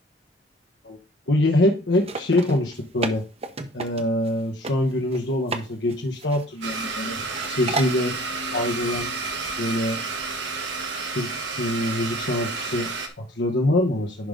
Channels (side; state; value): both; normal; correlation 0.50